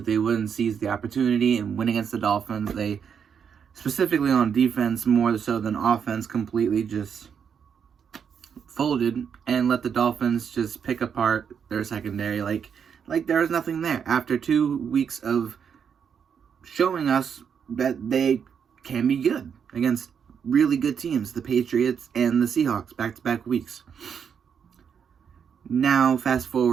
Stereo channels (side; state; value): left; quieter; 7.3 dB